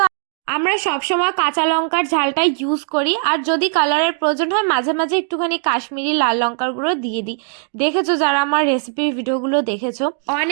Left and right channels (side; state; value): left; silent; 67 dB below the other